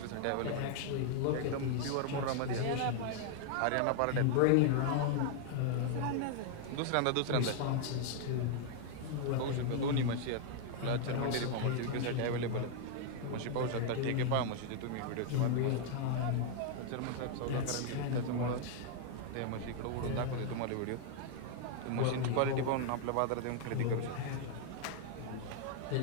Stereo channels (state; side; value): different; both; correlation 0.00